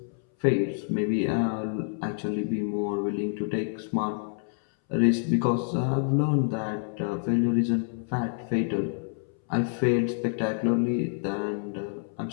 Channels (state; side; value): silent; right; 60 dB below the other